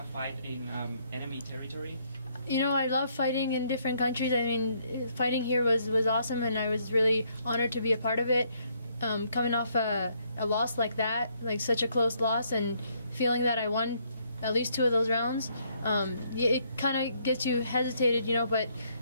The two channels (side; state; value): both; inverted; correlation -0.70